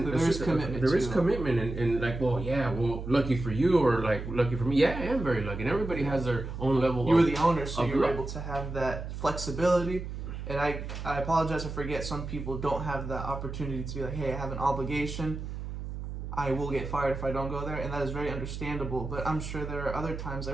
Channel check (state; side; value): noise; right; hum, 7 dB below the sound